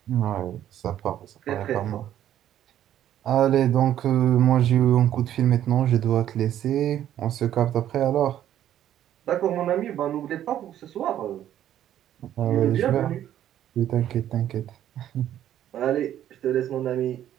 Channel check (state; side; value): quieter; left; 11.4 dB